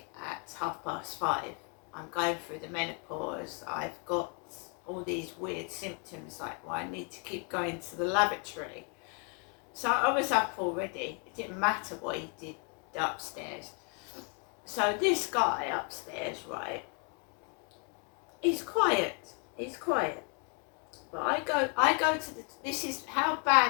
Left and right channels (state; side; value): quieter; right; 37.1 dB